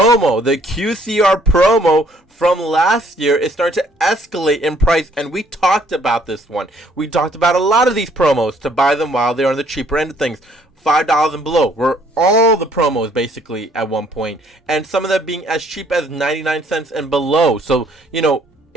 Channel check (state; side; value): normal; both; correlation 0.63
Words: the QCR promo from last year is starting to escalate in price, and we talked about this one. We talked about a lot of these promos to buy them while they're on the cheaper end of things. $5 and below were all the promos basically at one point, and some of them being as cheap as 99 cents and below. So,